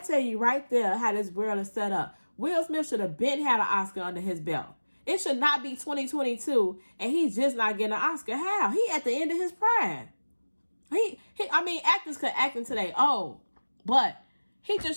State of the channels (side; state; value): both; inverted; correlation -1.00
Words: you right there how this world is set up. Will Smith should have been had an Oscar under his belt. It should not be 2022 and he's just not getting an Oscar. How? He at the end of his prime. I mean, actors could act until they old, but he